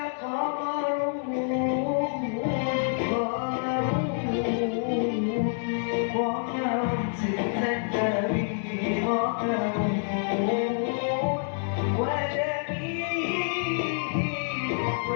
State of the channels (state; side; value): silent; right; digital silence